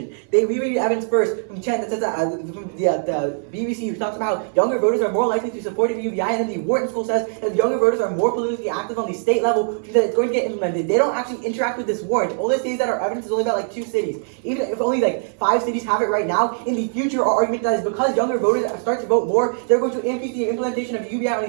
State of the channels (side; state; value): left; silent; 59 dB below the other